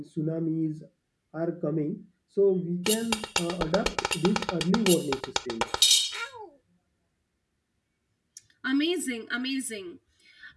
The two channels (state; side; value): identical; both; correlation 1.00